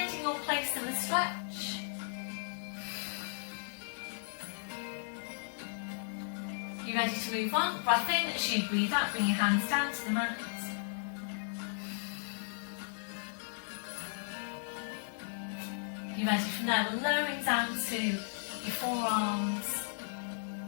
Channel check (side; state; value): right; silent; 54 dB below the other